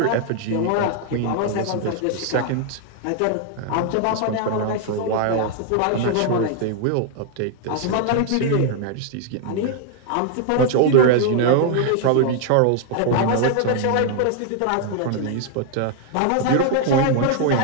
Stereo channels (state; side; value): different; both; correlation 0.00